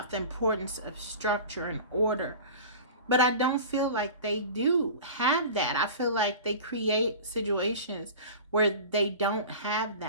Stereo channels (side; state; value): both; inverted; correlation -0.36